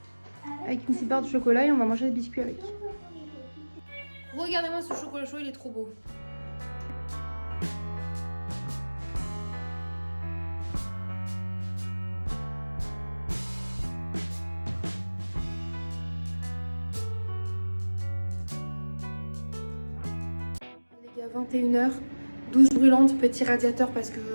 Avec une petite barre de chocolat et on va manger des biscuits avec. Regardez-moi ce chocolat chaud, il est trop beau. Les gars, 21h, douche brûlante, petit radiateur parce que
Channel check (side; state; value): both; inverted; correlation -1.00